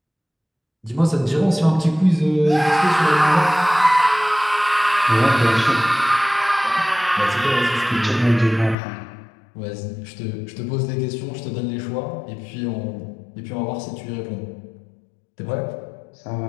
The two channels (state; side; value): drops out; right; at 8.8 s